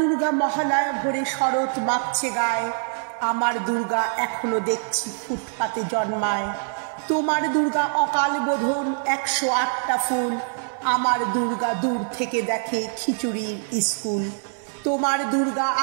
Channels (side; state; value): left; silent; 58 dB below the other